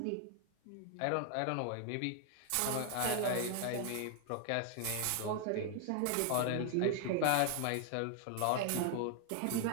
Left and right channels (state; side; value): different; both; correlation 0.00